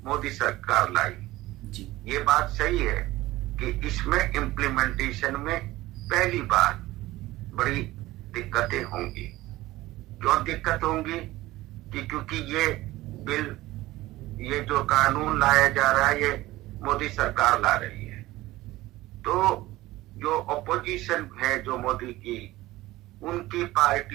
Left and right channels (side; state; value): left; quieter; 17.6 dB